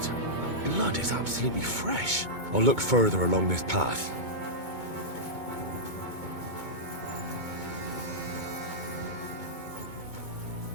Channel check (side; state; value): left; late; 2.2 ms